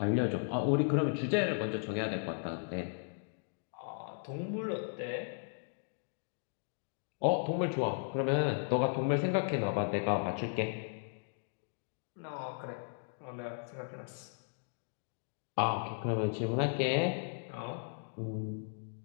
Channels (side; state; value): right; silent; digital silence